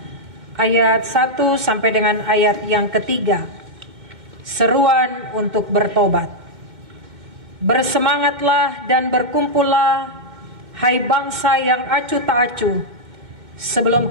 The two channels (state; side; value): late; left; 2.1 ms